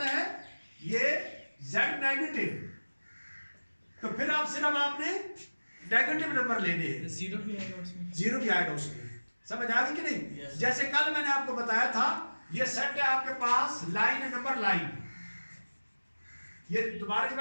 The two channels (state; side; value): inverted; both; correlation -1.00